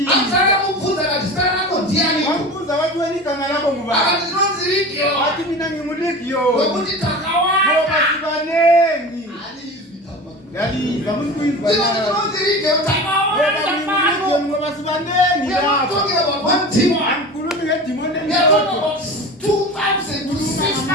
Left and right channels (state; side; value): normal; both; correlation 0.33